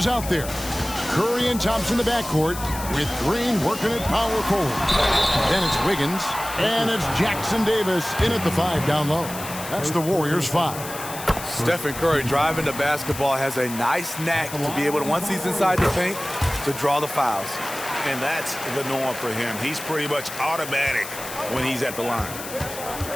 out there. Curry and Thompson in the backcourt, with Green working at power forward. Then it's Wiggins, and it's Jackson Davis in at the 5 down low. That's the Warriors' 5. Stephen Curry driving the basketball has a nice knack to be able to, once he's inside the paint, to draw the fouls. And that's the norm for him. He's pretty much automatic when he's at the line.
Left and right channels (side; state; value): left; noise; hiss, 11 dB below the sound